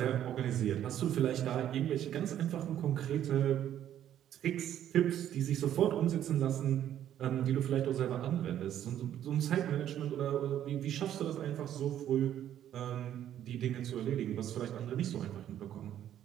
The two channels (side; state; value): left; quieter; 11.0 dB